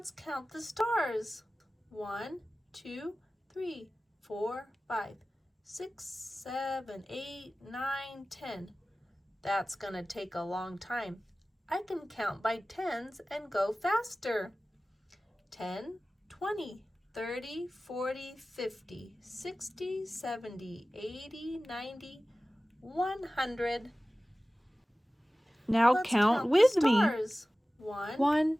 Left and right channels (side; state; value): both; normal; correlation 0.97